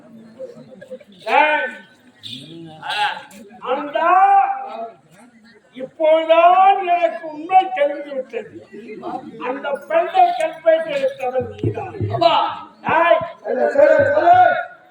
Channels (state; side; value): identical; both; correlation 1.00